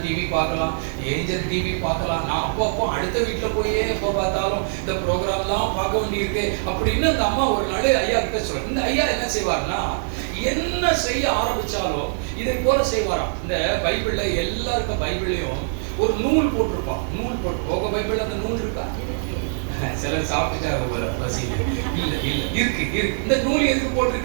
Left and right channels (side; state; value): left; silent; digital silence